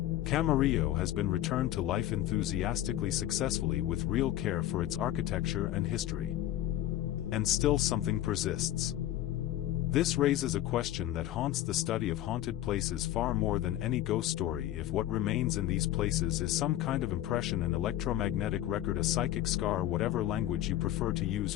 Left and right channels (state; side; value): quieter; right; 13.4 dB